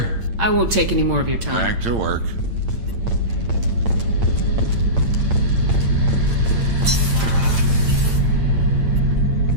I won't take any more of your time. Back to work.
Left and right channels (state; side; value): late; left; 8.8 ms